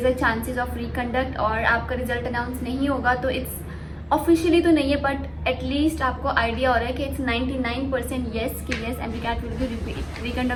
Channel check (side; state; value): both; identical; correlation 1.00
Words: is a chances of reconduct और आपका रिजल्ट अनाउंस नहीं होगा, तो इट्स ऑफिशियली तो नहीं है बट एटलीस्ट आपको आइडिया हो रहा है कि इट्स 99% येस कि yes MDCAT will be